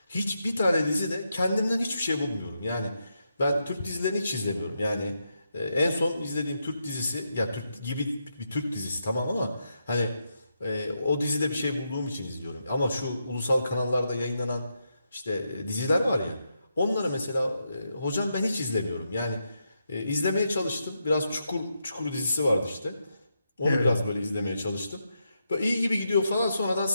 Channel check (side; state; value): both; inverted; correlation -0.83